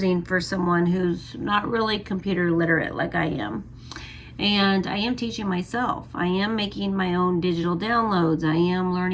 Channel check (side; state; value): both; identical; correlation 1.00